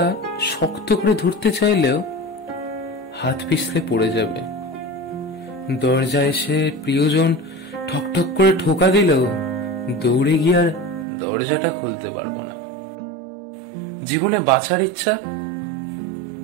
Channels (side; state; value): left; drops out; at 11.1 s